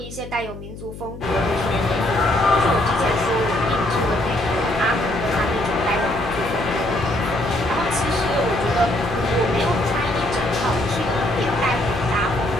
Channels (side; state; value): left; noise; hum, 13 dB below the sound